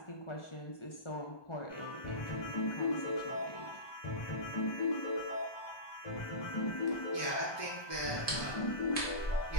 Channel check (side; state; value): right; late; 1.2 ms